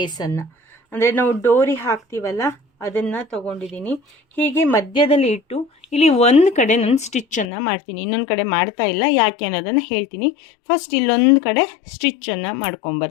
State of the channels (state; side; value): drops out; right; at 7.5 s